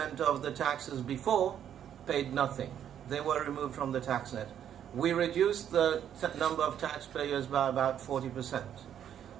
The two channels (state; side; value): quieter; left; 9.7 dB